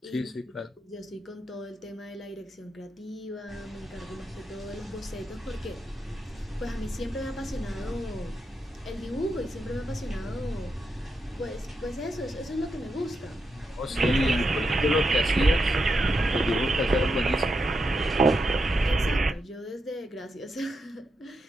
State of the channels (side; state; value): both; normal; correlation 0.85